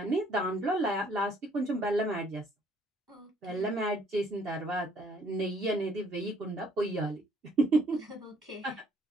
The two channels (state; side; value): normal; both; correlation 0.63